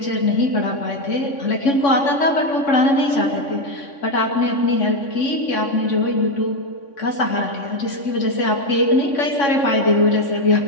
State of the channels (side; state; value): right; late; 3.6 ms